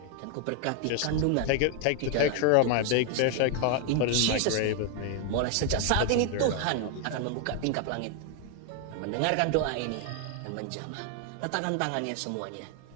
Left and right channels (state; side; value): different; both; correlation 0.00